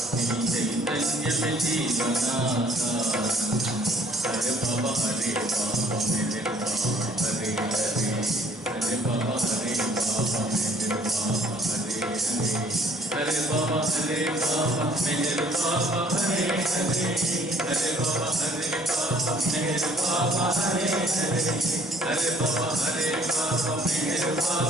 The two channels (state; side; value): normal; both; correlation 0.58